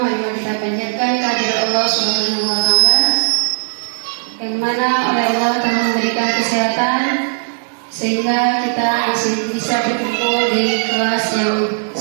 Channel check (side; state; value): left; silent; digital silence